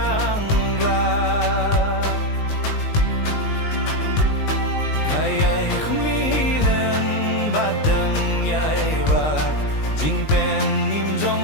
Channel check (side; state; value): right; late; 19 ms